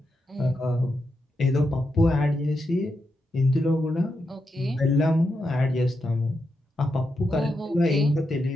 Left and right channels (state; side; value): normal; both; correlation 0.85